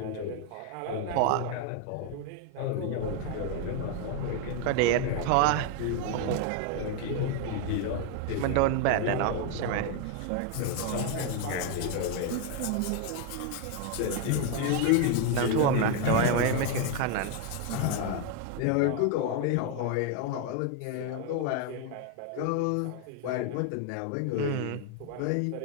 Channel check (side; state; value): both; different; correlation 0.01